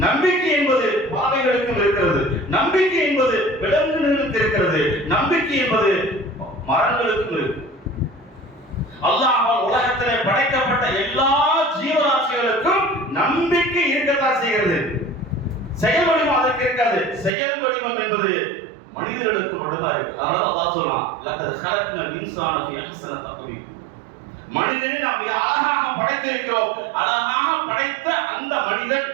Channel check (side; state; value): left; drops out; at 17.3 s